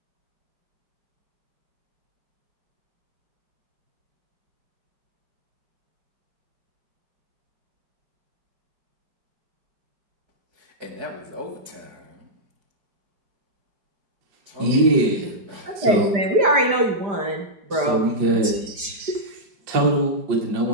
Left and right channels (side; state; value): left; late; 5.0 ms